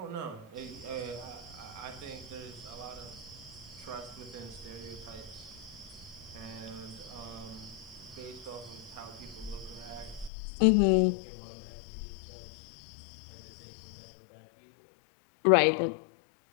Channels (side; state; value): right; drops out; at 10.3 s